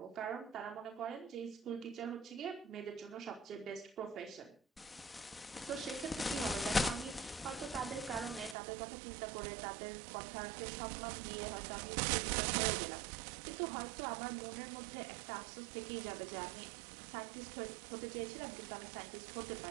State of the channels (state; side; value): drops out; left; at 8.6 s